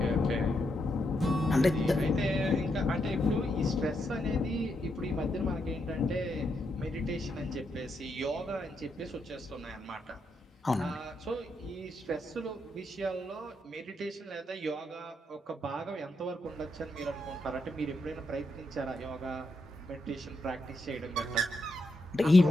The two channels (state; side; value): normal; both; correlation 0.81